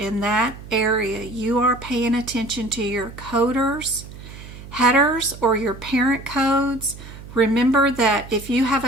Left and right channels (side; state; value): right; noise; hum, 15 dB below the sound